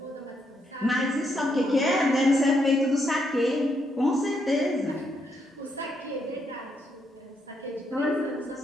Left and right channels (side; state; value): both; normal; correlation 0.77